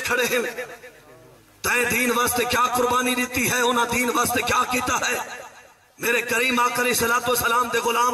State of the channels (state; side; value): identical; both; correlation 1.00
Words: खड़े हैं, तय दीन वास्ते क्या कुर्बानी दी है, उन्हें दीन वास्ते क्या किया है। मेरे करीम आका अलैहिस्सलातु वस्सलाम दे